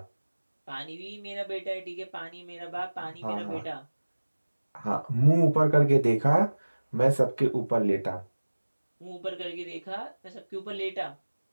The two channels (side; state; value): both; inverted; correlation -1.00